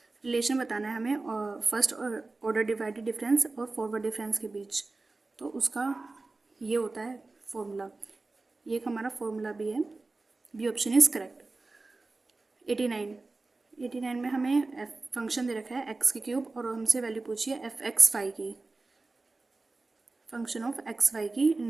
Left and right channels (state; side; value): quieter; left; 3.5 dB